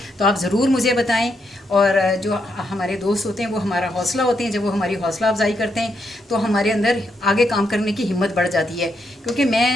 तो आप ज़रूर मुझे बताएं। और जो हमारे दोस्त होते हैं वो हमारा हौसला होते हैं, जब वो हमारी हौसला अफजाई करते हैं तो हमारे अंदर आगे काम करने की हिम्मत बढ़ जाती है। क्योंकि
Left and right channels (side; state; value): both; normal; correlation 0.80